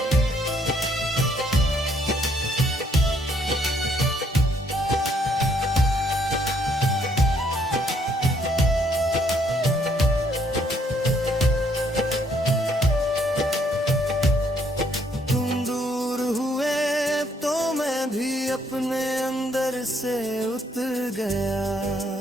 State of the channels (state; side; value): normal; both; correlation 0.68